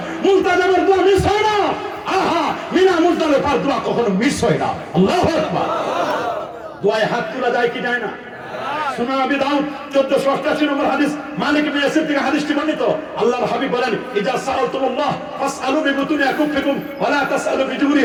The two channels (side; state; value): both; identical; correlation 1.00